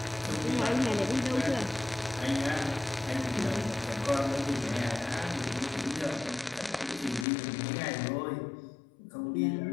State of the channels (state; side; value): drops out; right; at 7.2 s